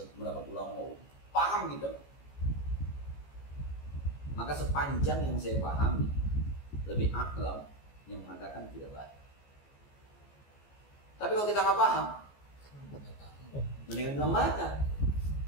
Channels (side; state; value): right; late; 14 ms